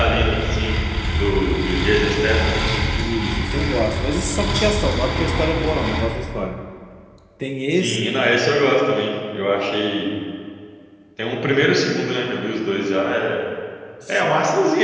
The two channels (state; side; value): identical; both; correlation 1.00